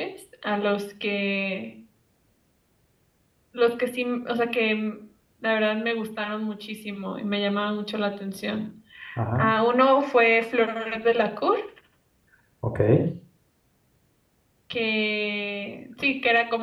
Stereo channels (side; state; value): both; identical; correlation 1.00